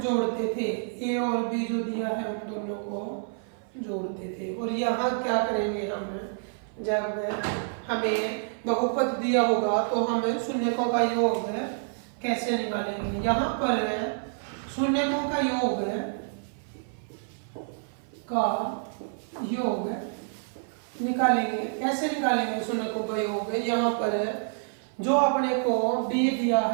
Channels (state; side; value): silent; left; 55 dB below the other